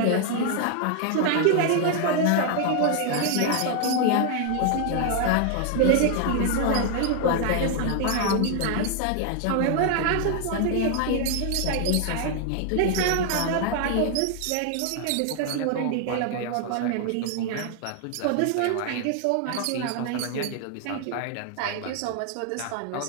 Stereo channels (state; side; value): different; both; correlation 0.00